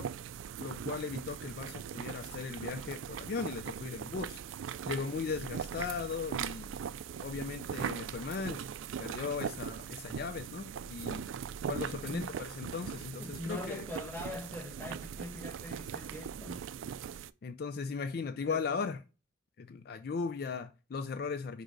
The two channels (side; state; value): both; normal; correlation 0.17